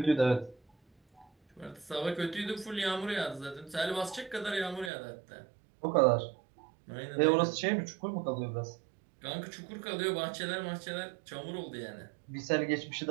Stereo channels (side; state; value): left; drops out; at 4.9 s